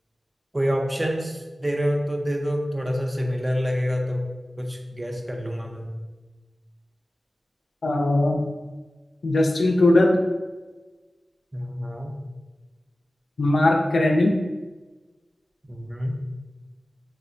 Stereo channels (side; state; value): both; normal; correlation 0.95